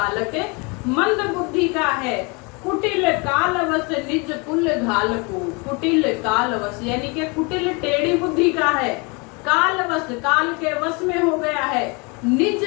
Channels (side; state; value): right; quieter; 29.9 dB